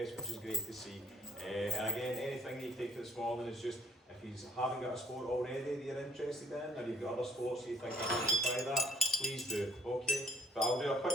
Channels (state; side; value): normal; both; correlation 0.60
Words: which is great to see. And again, anything you take for this morning is just, if you haven't got a sport already that you're interested in, or you've got other sports you think I'd like to try that, please do, okay? But I'll do a